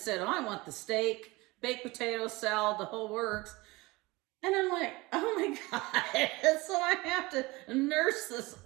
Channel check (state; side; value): quieter; left; 22.3 dB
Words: I want the steak, baked potato, salad, the whole works. And I'm like, oh my God. So I have to nurse this